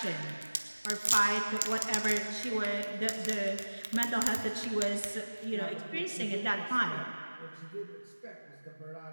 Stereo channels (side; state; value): both; inverted; correlation -1.00